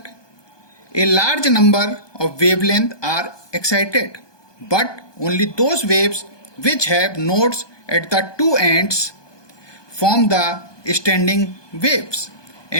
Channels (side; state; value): right; late; 1.2 ms